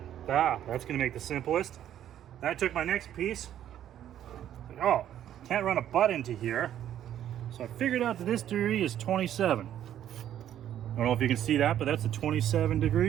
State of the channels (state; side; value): quieter; left; 11.0 dB